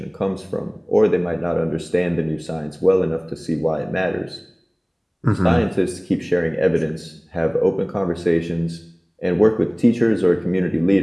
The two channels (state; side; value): identical; both; correlation 1.00